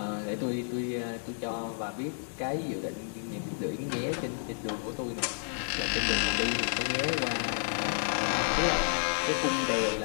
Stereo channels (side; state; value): right; silent; digital silence